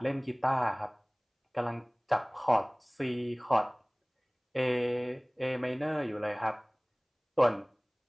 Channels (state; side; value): identical; both; correlation 1.00